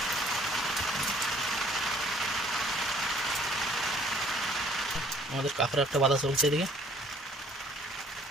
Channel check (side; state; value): both; normal; correlation 0.59